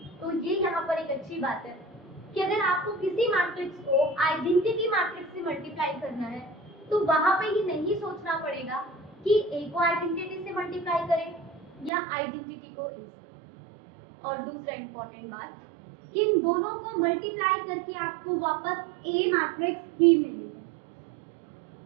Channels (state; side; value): drops out; left; at 11.9 s